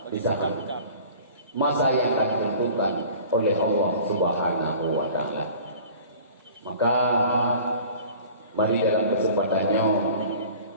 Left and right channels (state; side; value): inverted; both; correlation -0.44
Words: di saat masa yang akan ditentukan oleh Allah Subhanahu wa taala. Maka mari dalam kesempatannya